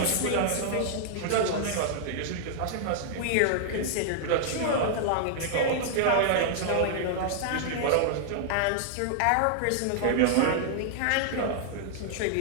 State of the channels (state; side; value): different; both; correlation -0.01